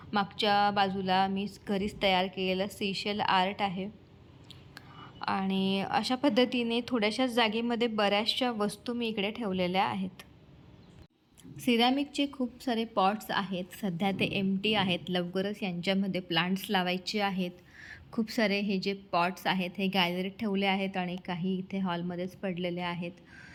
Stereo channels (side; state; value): both; identical; correlation 1.00